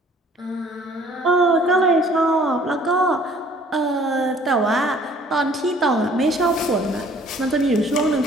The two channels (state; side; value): normal; both; correlation 0.55